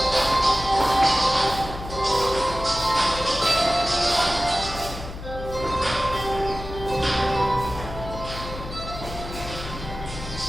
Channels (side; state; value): left; noise; hum, 10 dB below the sound